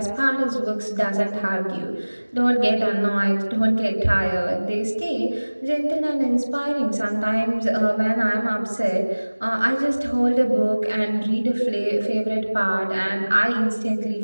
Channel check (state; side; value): inverted; both; correlation -1.00